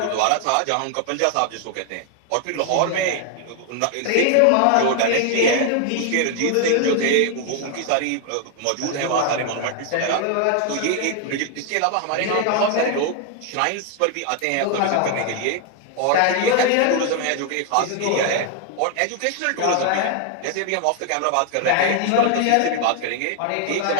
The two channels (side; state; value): both; different; correlation 0.00